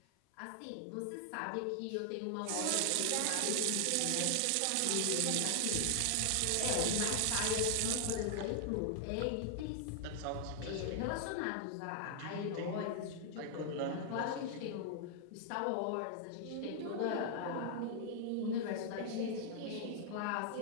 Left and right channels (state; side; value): different; both; correlation 0.00